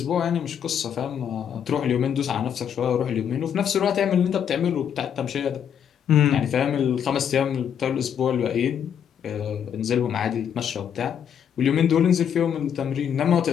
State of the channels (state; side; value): quieter; right; 8.5 dB